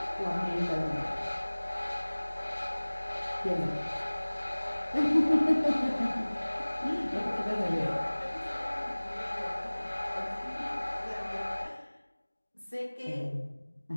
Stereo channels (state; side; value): inverted; both; correlation -1.00